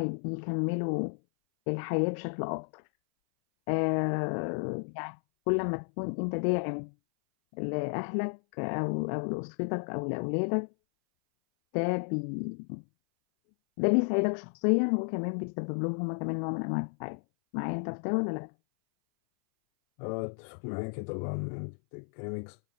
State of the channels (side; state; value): right; silent; 56 dB below the other